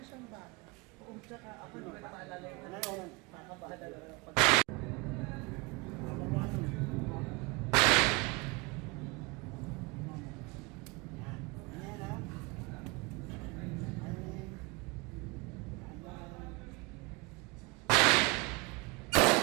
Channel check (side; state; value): left; quieter; 26.4 dB